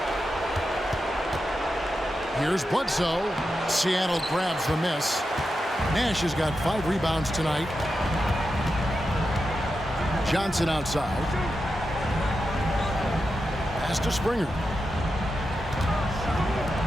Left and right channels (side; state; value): both; normal; correlation 0.89